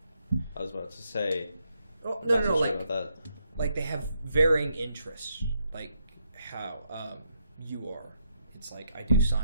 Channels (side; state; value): both; inverted; correlation -0.77